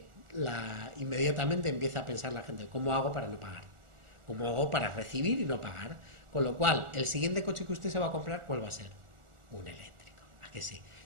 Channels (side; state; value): left; late; 1.4 ms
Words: inmediatamente empieza a pensar la gente, ¿cómo hago para no pagar? ¿Cómo hago para recibir y no pagar? Con lo cual, el siguiente coche que usted se va a comprar, ¿cuál va a ser? Un eléctrico. ¿A que sí?